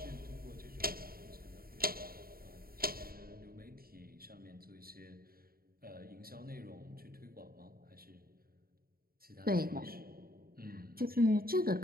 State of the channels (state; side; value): late; left; 0.43 ms